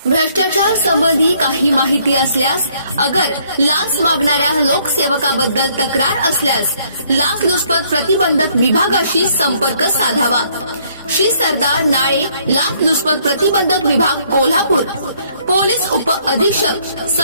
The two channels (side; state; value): both; inverted; correlation -0.66